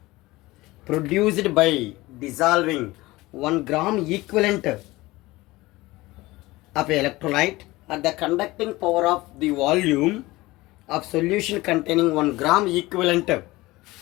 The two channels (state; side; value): quieter; right; 19.8 dB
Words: produced by dissolving 1 gram equivalent of an electrolyte at the conducting power of the volume of solution containing 1 gram equivalent